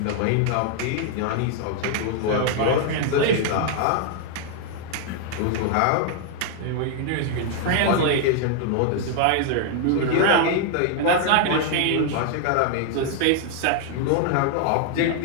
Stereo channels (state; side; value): different; both; correlation 0.00